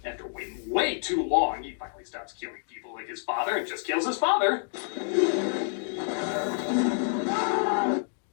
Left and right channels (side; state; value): right; silent; 58 dB below the other